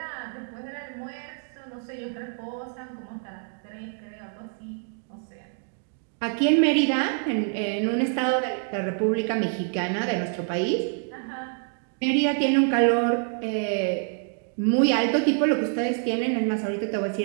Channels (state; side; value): silent; left; 60 dB below the other